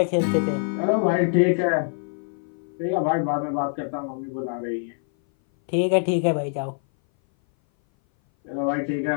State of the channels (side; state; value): right; silent; 59 dB below the other